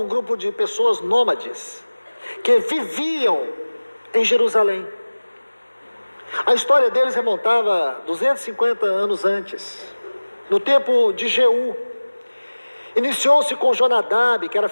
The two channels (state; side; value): inverted; both; correlation -1.00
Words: grupo de pessoas nômades, que viviam em Jerusalém. A história deles remontava 250 anos antes, no tempo de Jeú. Iniciou-se com Jonadab, que era